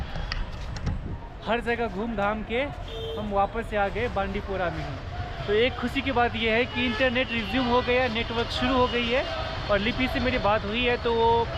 हर जगह घूम घाम के हम वापस से आ गए बांडीपुरा में ही। तो एक खुशी की बात यह है कि इंटरनेट रिज्यूम हो गया, नेटवर्क शुरू हो गई है और लिपि से मेरी बात हुई है तो वो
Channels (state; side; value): identical; both; correlation 1.00